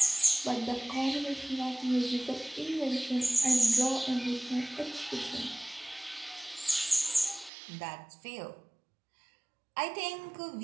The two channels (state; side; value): drops out; left; at 7.5 s